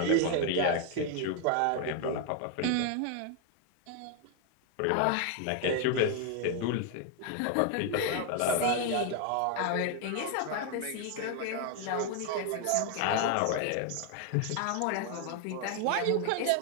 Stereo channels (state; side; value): different; both; correlation 0.01